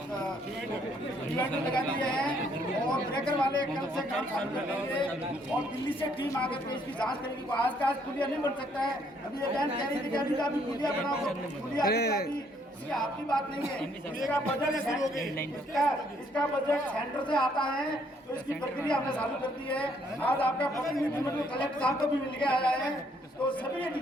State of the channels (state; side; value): normal; both; correlation 0.68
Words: डिवाइडर लगा दिए हैं और ब्रेकर वाले कल से काम चालू कर देंगे और दिल्ली से टीम आकर के इसकी जांच करेगी। आज का आज पुलिया नहीं बन सकता है। अभी ये बहन कह रही थी कि अभी का भी पुलिया बनाओ, पुलिया ये आपकी बात नहीं है। इसका बजट इसका बजट सेंटर से आता है तो इसकी प्रक्रिया हमने चालू कर दी है। आज आपका प्रतिनिधिमंडल कलेक्टर साहब को भी मिल के आया है तो सभी